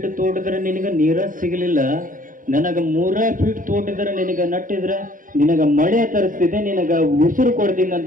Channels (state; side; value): late; left; 0.39 ms